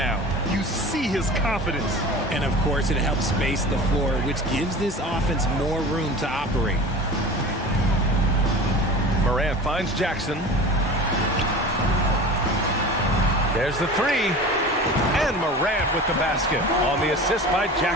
You see his confidence. And, of course, it helps space the floor, which gives this offense more room to operate. Morant finds Jackson. There's the three. And Morant with the basket on the assist by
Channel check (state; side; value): normal; both; correlation 0.36